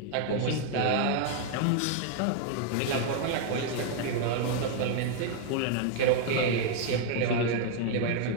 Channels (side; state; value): both; different; correlation 0.00